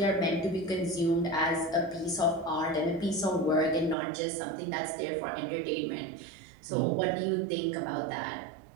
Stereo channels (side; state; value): left; drops out; at 4.0 s